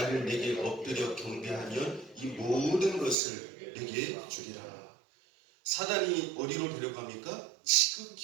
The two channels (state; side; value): drops out; left; at 3.2 s